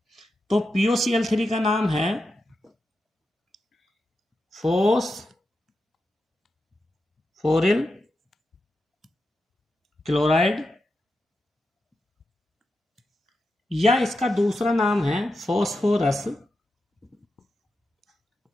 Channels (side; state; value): both; normal; correlation 0.88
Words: तो POCl3 का नाम है फोस्फोरिल क्लोराइड, या इसका दूसरा नाम है फोस्फोरस